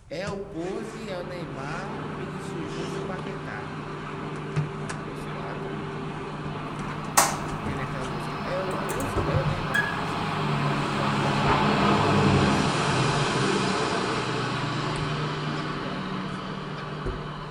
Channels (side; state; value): both; identical; correlation 1.00